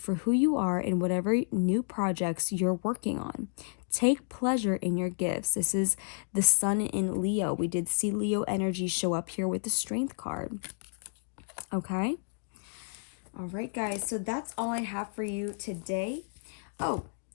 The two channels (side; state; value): right; silent; digital silence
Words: who you are in whatever new projects you're working on. Take pleasure in your gifts. This is the sun in Leo. We did see Leo energy show up here with the strength card. Okay? All right, guys. So that's all I have for you today. Oh,